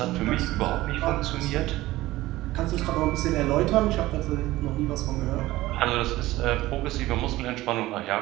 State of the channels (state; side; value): quieter; left; 17.3 dB